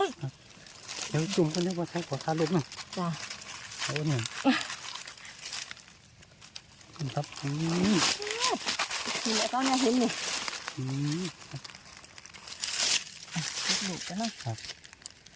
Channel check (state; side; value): identical; both; correlation 1.00